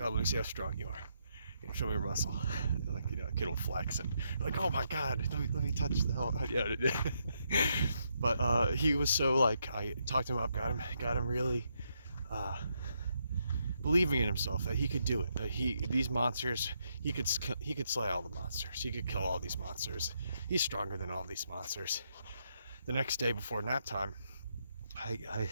me see how strong you are. Show me your muscle. A kid will flex and oh my god, let me touch the hell. Yeah. But he was so I talked him up, got him really believing in himself that he could do it. That these monsters, he could slay all the monsters. He could kill all these monsters. He's stronger than all these monsters. The next day before nap time, I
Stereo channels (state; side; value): inverted; both; correlation -0.78